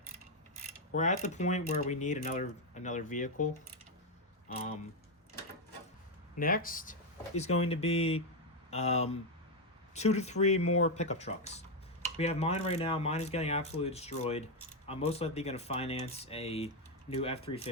we're at the point where we need another vehicle. Next is going to be 2 to 3 more pickup trucks. We have mine right now. Mine is getting absolutely destroyed. I'm most likely going to finance a new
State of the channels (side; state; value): both; normal; correlation 0.04